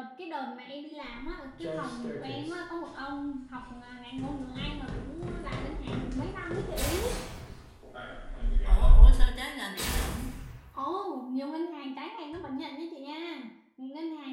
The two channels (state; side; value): identical; both; correlation 1.00